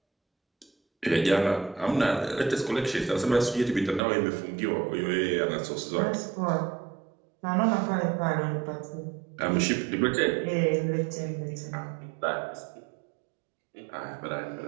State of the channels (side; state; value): left; drops out; at 4.0 s